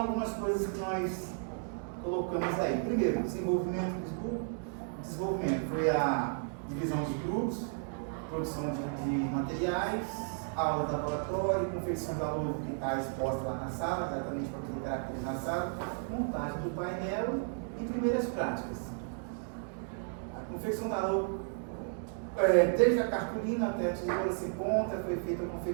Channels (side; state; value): left; silent; 55 dB below the other